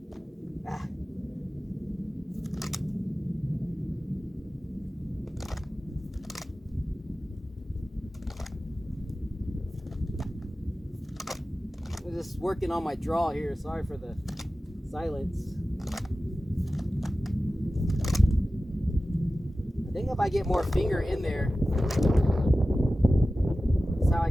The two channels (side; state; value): both; normal; correlation 0.95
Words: I'm just working on my draw here. Sorry for the silence. I think if I get more finger in there, that's how I